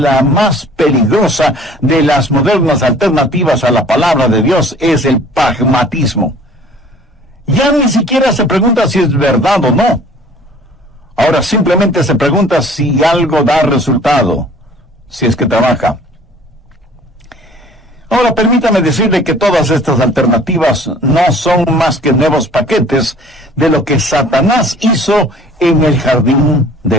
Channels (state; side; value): normal; both; correlation 0.51